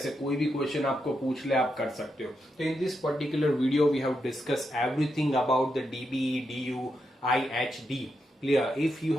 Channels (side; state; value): both; normal; correlation 0.84